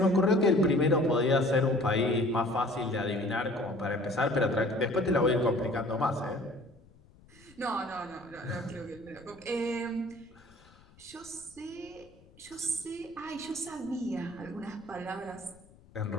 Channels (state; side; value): noise; left; rumble, 26 dB below the sound